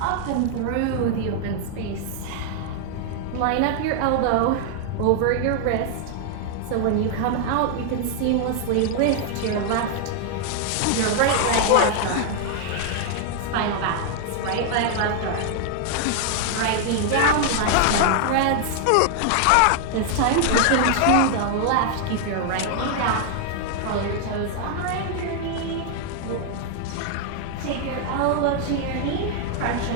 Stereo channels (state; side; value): different; both; correlation 0.00